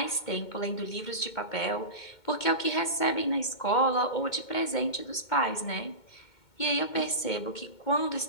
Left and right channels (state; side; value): late; right; 2.1 ms